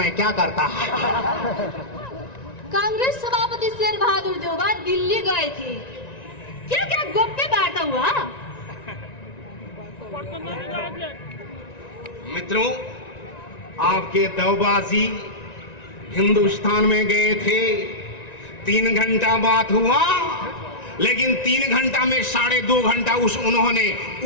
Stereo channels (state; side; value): late; right; 1.9 ms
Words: क्या करता। कांग्रेस सभापति शेर बहादुर देउबा दिल्ली गए थे, क्या क्या गोप्य वार्ता हुआ? मित्रों, आपके देवबाजी हिंदुस्तान में गए थे, 3 घंटा बात हुआ, लेकिन 3 घंटा में 2.5 घंटा उन्होंने